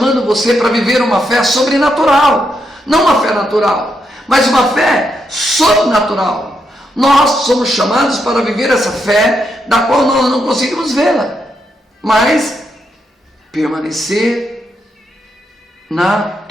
você para viver uma fé sobrenatural, não uma fé natural, mas uma fé sobrenatural. Nós somos chamados para viver essa fé, da qual nós não conseguimos vê-la, mas permanecer na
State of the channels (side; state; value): both; normal; correlation 0.81